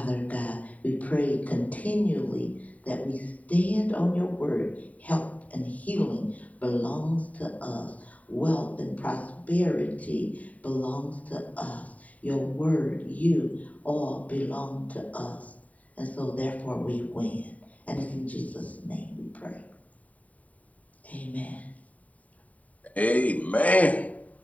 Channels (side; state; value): right; late; 0.070 ms